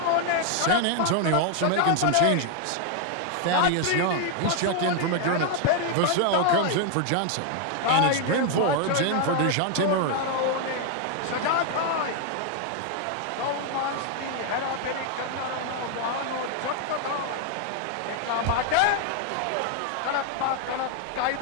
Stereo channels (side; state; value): both; different; correlation 0.00